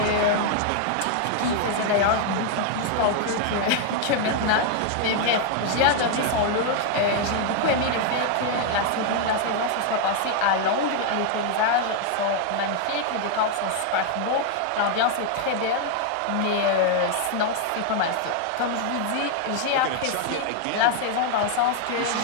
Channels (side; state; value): both; different; correlation 0.00